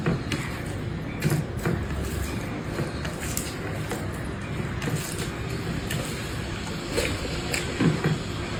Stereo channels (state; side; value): identical; both; correlation 1.00